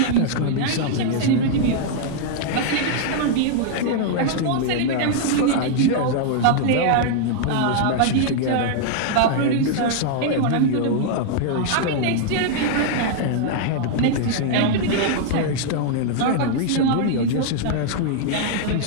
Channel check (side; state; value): both; different; correlation -0.01